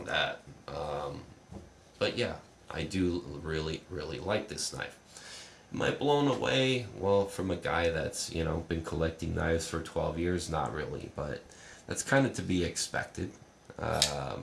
that. But yeah, I do really like this knife. Am I blown away? Well, from a guy that's been collecting knives for 12 years, not really, but that's kind of to be expected.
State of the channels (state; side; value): identical; both; correlation 1.00